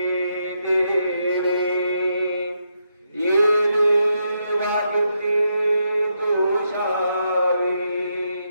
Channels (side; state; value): both; inverted; correlation -0.81